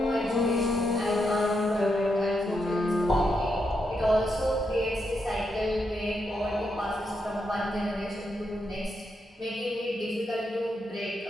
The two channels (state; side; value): normal; both; correlation 0.82